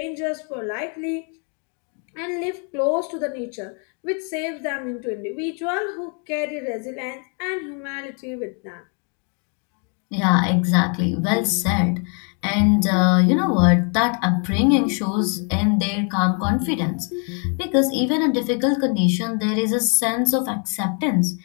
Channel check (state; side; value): quieter; right; 39.1 dB